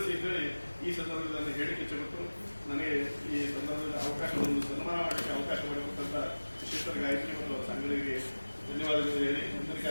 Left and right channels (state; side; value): inverted; both; correlation -1.00